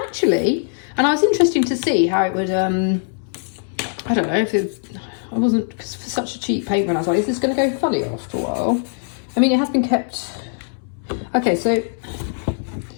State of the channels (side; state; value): right; silent; 64 dB below the other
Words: and I was interested to see how it would, I don't know if it, I wasn't, because for such a cheap paint run, I was like, is this going to go funny after a while? I mean, it has been kept. Okay, so